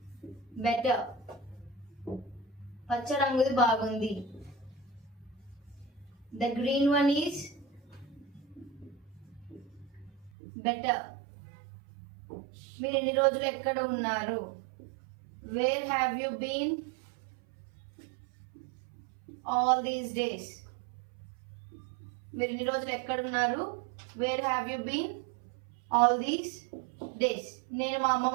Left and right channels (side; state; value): left; drops out; at 10.3 s